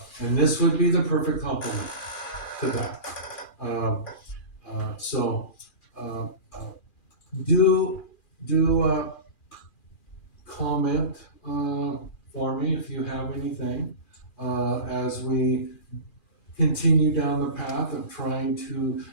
this would be the perfect complement to that. Do comment for me if you have anything, as we continue down the path of trying to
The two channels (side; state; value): right; late; 2.4 ms